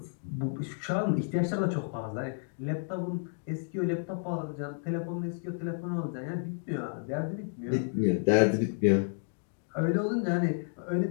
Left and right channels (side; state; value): right; silent; digital silence